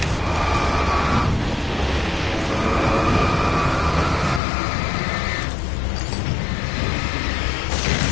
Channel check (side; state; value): right; drops out; at 4.4 s